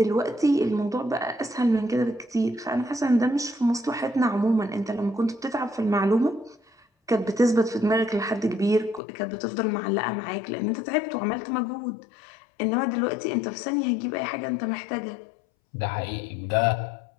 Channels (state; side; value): drops out; right; at 9.0 s